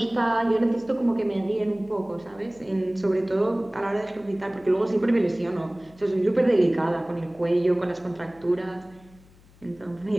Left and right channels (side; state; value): left; noise; hum, 26 dB below the sound